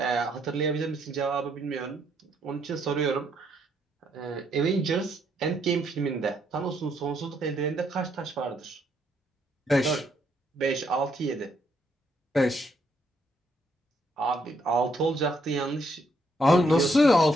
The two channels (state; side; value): normal; both; correlation 0.73